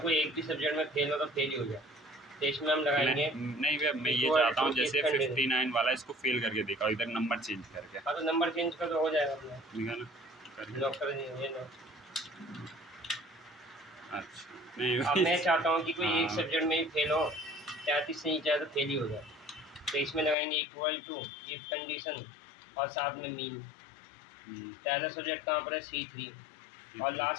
कोई एक भी सब्जेक्ट में फेल हो तो फेल ही हो जाए, तो इसमें हम लगाएंगे नहीं भैया, मैं ये चाहता हूँ जैसे 59 वाला इसको फेल करके देखा, इधर नंबर चेंज करके। हाँ, तो नंबर चेंज कर तो हो जाएगा अपना, लॉक कर दीजिए। अच्छा, नहीं अब मैं चाहता हूँ कि कोई एक सब्जेक्ट में ही फेल हो, 33 से नीचे तो फेल ही हो जाए, तो इसमें लगाएंगे इक्वल टू इफ कंडीशन और साथ में मीन। पहला सब्जेक्ट कहाँ पर है? C3 और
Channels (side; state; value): right; drops out; at 20.4 s